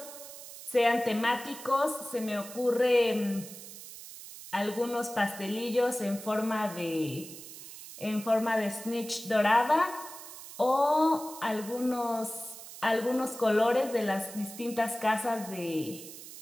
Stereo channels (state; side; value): noise; right; hiss, 14 dB below the sound